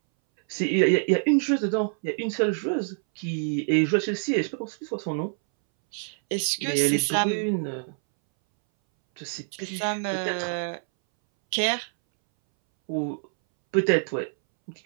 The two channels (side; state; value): left; silent; 61 dB below the other